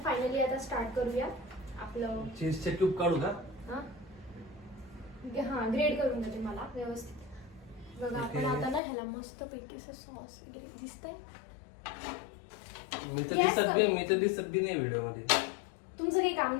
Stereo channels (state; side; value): drops out; right; at 8.8 s